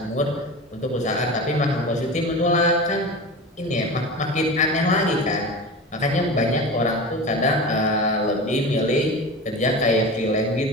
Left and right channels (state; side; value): normal; both; correlation 0.30